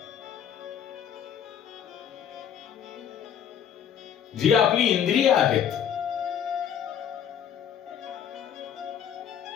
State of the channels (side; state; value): right; quieter; 8.8 dB